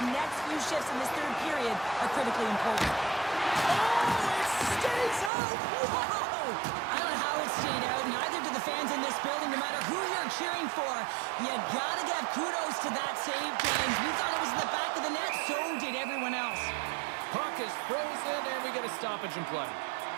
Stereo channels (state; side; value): drops out; left; at 5.3 s